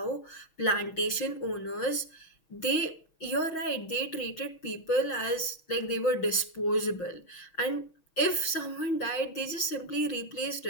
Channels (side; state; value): right; late; 6.3 ms